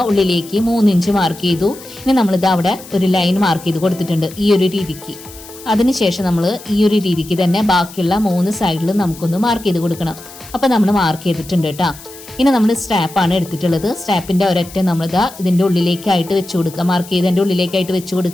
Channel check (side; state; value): left; noise; hiss, 18 dB below the sound